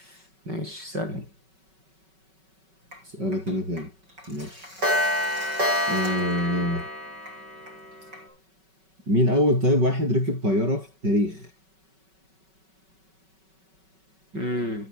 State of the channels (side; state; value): left; late; 5.3 ms